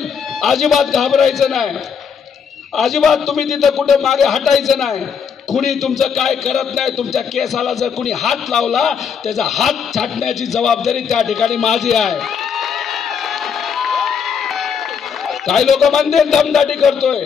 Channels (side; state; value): right; quieter; 6.8 dB